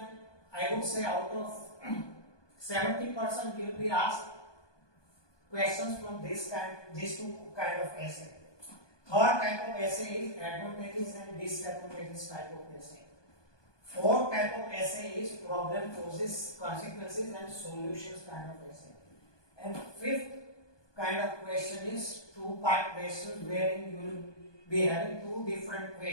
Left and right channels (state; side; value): late; right; 1.2 ms